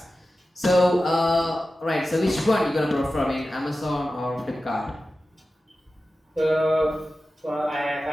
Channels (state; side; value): normal; both; correlation 0.94